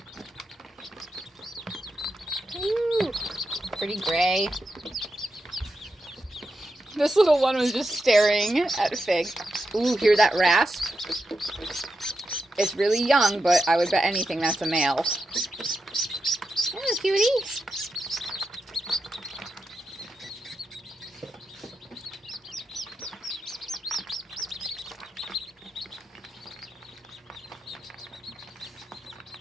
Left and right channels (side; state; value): both; normal; correlation 0.88